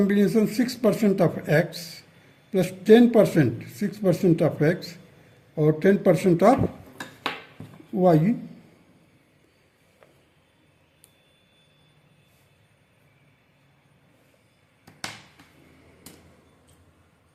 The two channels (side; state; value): both; identical; correlation 1.00